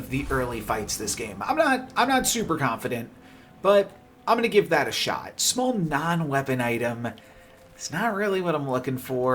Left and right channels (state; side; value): identical; both; correlation 1.00